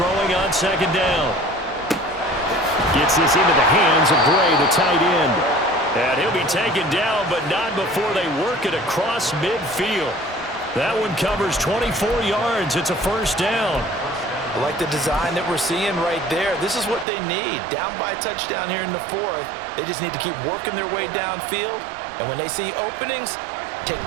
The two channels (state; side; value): drops out; left; at 17.1 s